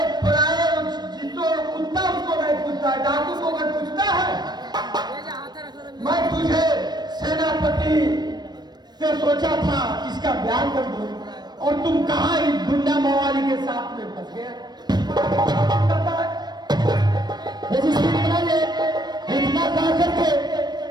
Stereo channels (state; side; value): late; left; 0.20 ms